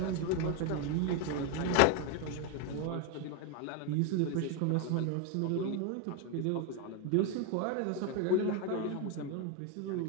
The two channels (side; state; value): both; different; correlation 0.01